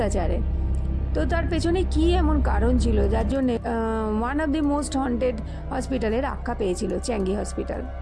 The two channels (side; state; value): both; identical; correlation 1.00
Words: তো তার পেছনে কি এমন কারণ ছিল যার জন্য one of the most haunted হসপিটালের আখ্যা পেয়েছিল চ্যাঙ্গি হসপিটাল।